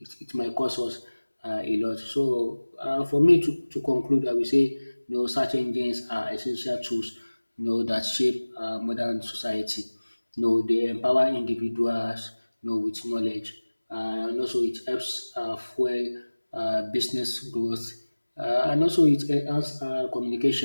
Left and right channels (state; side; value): inverted; both; correlation -1.00